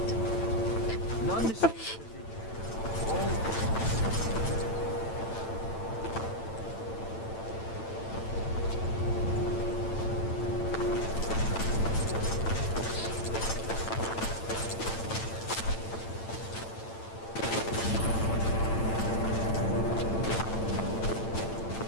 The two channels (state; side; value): late; right; 8.9 ms